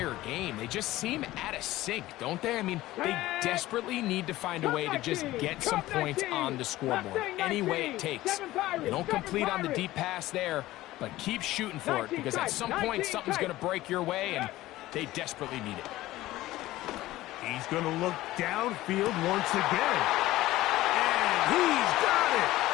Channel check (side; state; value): right; quieter; 16.6 dB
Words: game. They just seem out of sync, don't they? I mean, they desperately need to find a way to just get some points on the scoreboard, any way it takes. They don't complete on the deep pass there, but keep shooting for it, because at some point something's going to break your way, and they desperately need it. He's going to look downfield once again. And he's got it.